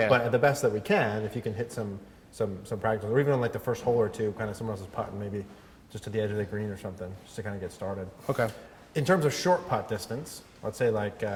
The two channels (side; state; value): both; identical; correlation 1.00